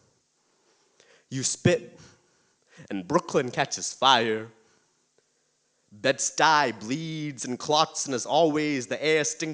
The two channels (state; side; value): identical; both; correlation 1.00